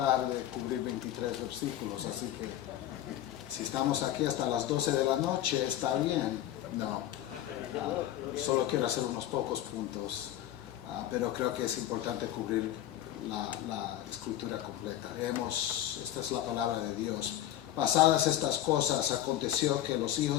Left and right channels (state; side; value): quieter; right; 12.7 dB